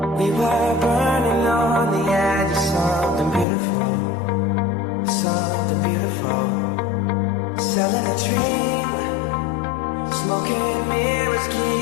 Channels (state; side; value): drops out; right; at 3.5 s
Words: we were burning on the edge of something beautiful, something beautiful. Selling a dream, smoking mirrors